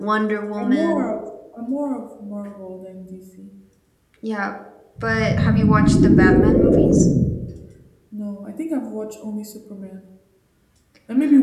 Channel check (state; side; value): identical; both; correlation 1.00